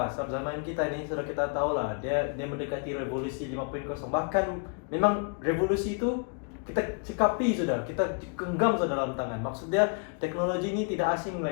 Sebab zaman kita ini sudah kita tahulah dia mendekati revolusi 5.0. Bahkan memang revolusi itu kita cekapi sudah, kita genggam sudah dalam tangan. Maksudnya teknologi ini tidak asing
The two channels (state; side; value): quieter; right; 38.6 dB